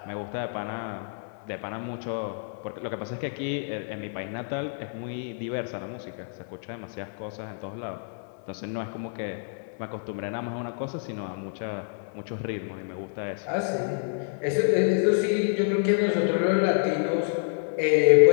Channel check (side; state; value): right; silent; digital silence